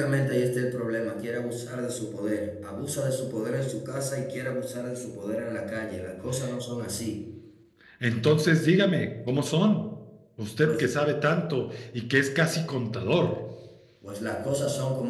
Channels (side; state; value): both; identical; correlation 1.00